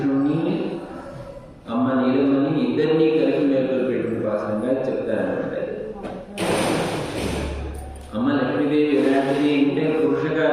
అమ్మ నీలమని ఇద్దరినీ కలిపి మేలుకొల్పేటువంటి పాసనంగా చెప్తారన్నమాట. అమ్మ లక్ష్మీదేవి ఎలాంటిది అంటే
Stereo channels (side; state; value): both; identical; correlation 1.00